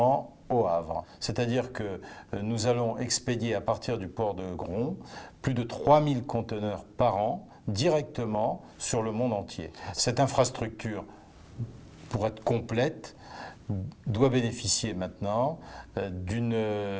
au Havre. C'est-à-dire que nous allons expédier à partir du port de Gron plus de 3000 conteneurs par an directement sur le monde entier. Cette infrastructure, pour être complète, doit bénéficier maintenant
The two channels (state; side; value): identical; both; correlation 1.00